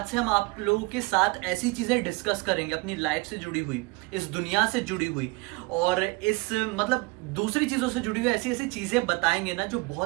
से हम आप लोगों के साथ ऐसी चीजें डिस्कस करेंगे, अपनी लाइफ से जुड़ी हुई, इस दुनिया से जुड़ी हुई और इस दूसरी चीजों से जुड़ी हुई ऐसी ऐसी चीजें बताएंगे ना जो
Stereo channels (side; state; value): left; quieter; 26.3 dB